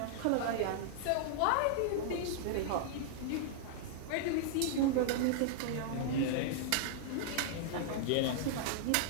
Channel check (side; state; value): both; different; correlation -0.01